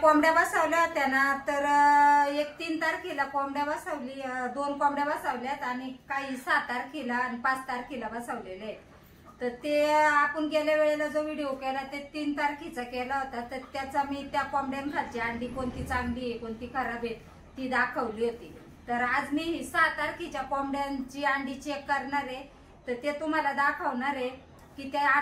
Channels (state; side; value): identical; both; correlation 1.00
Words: बसवल्या होत्या ना, तर 3 तारखेला कोंबड्या बसवली, 2 कोंबड्या बसवल्यात आणि काही 6 तारखेला आणि 5 तारखेला बसवलेले आहेत। तर ते आपण गेल्या वेळेला जो व्हिडिओ केला ते 3 तारखेचा केला होता, तर त्याचा मी त्या कोंबड्यांखालची अंडी कोणती चांगली आहे कोणती खराब आहे ती दाखवली होती। तर आज मी 6 तारखेच्या कोंबड्यांची अंडी चेक करणार आहे, तर ते तुम्हाला दाखवणार आहे की त्या